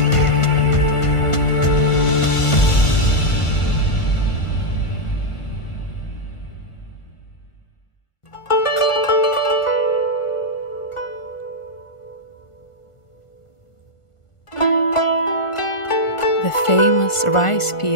The famous rice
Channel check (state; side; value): late; right; 1.4 ms